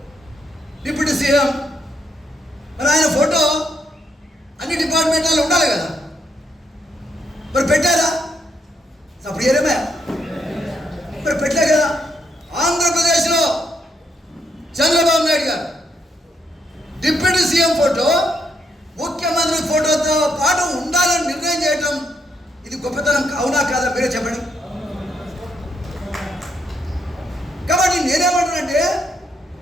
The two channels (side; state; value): both; normal; correlation 0.76